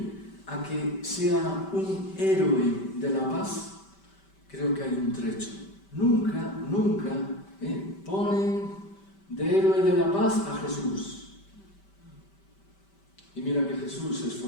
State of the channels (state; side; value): late; right; 5.1 ms